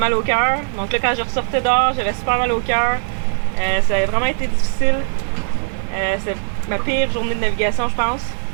au cœur. Donc là, quand je ressortais dehors, j'avais super mal au cœur. Ça a vraiment été difficile. C'était ma pire journée de navigation, je pense.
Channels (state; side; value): silent; left; digital silence